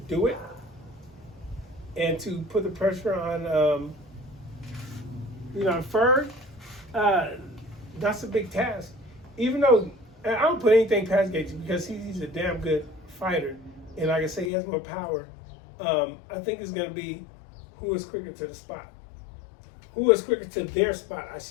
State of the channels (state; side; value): drops out; right; at 14.5 s